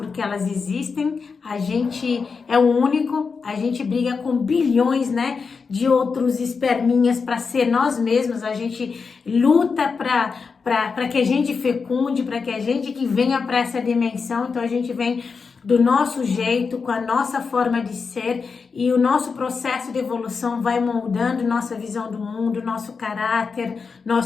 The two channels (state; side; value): quieter; right; 5.2 dB